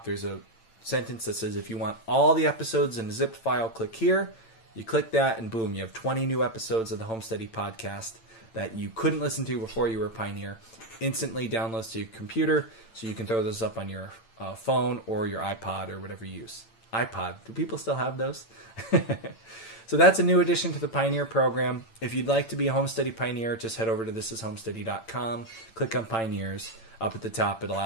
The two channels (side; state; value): right; late; 8.9 ms